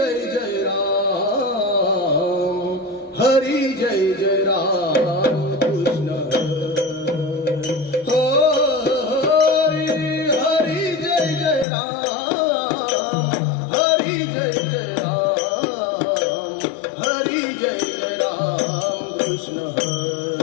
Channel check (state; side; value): drops out; right; at 11.7 s